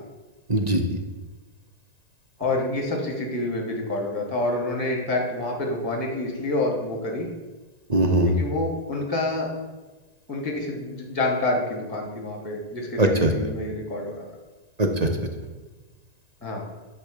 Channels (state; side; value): late; left; 1.9 ms